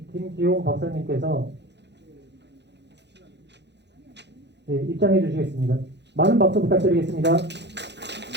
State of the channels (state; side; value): late; left; 0.50 ms